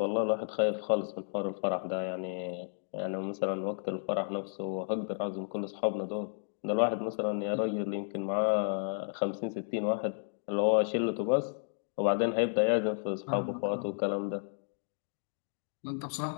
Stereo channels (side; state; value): right; silent; digital silence